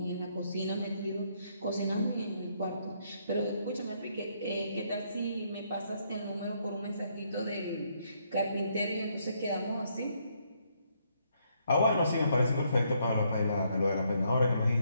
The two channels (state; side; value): inverted; both; correlation -0.73